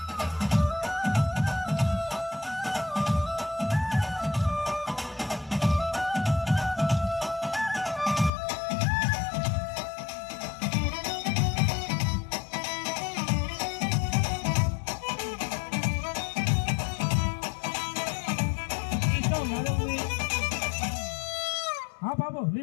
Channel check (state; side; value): drops out; right; at 8.3 s